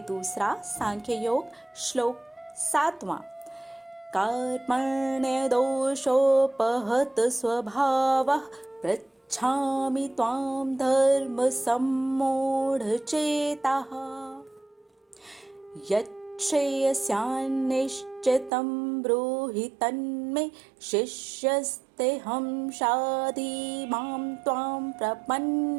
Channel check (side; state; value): left; drops out; at 18.5 s